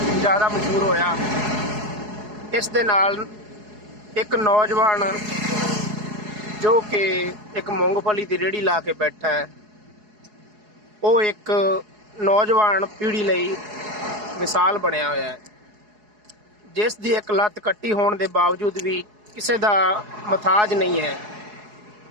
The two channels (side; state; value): left; late; 4.7 ms